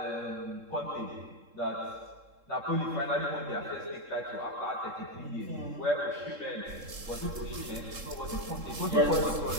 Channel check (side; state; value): left; late; 3.7 ms